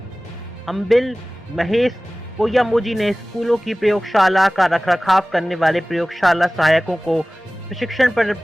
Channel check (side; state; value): both; normal; correlation 0.98